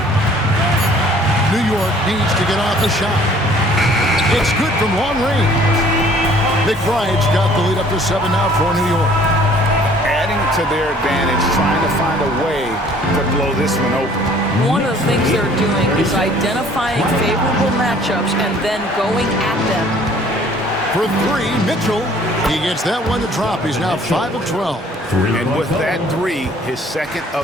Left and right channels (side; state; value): both; normal; correlation 0.55